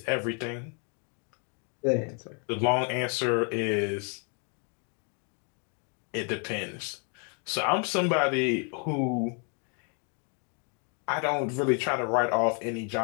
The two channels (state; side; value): quieter; right; 39.3 dB